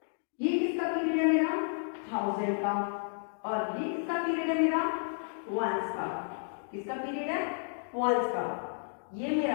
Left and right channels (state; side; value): silent; right; digital silence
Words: ये किसका पीरियड है मेरा, 1000 का, और ये किसका पीरियड है मेरा, वंस का। किसका पीरियड है, वंस का। ये मेरा